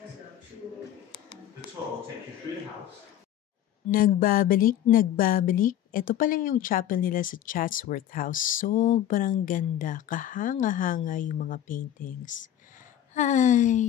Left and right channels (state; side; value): quieter; right; 11.4 dB